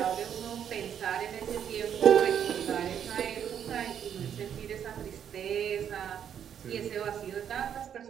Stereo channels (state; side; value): quieter; left; 8.8 dB